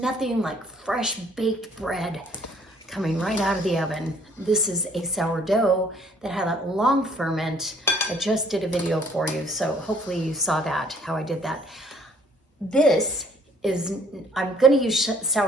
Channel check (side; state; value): both; normal; correlation 0.60